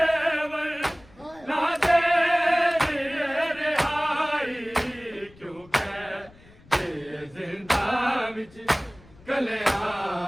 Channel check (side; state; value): left; noise; rumble, 25 dB below the sound